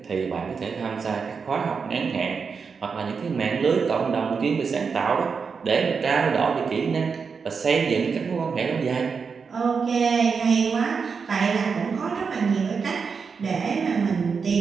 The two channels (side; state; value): left; quieter; 5.5 dB